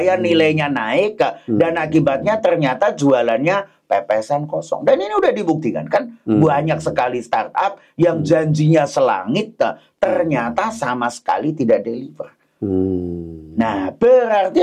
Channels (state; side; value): identical; both; correlation 1.00